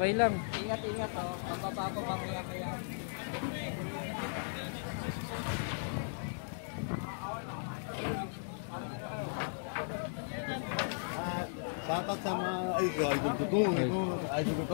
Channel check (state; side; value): silent; right; digital silence